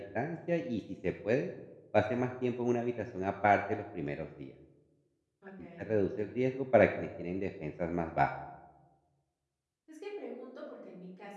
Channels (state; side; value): identical; both; correlation 1.00